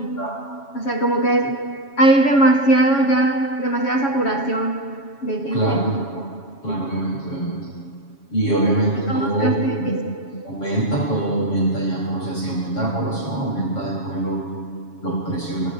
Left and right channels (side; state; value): right; late; 7.2 ms